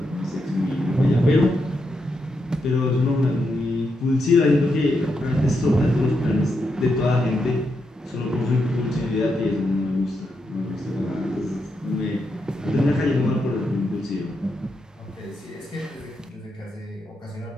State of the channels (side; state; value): both; normal; correlation 0.83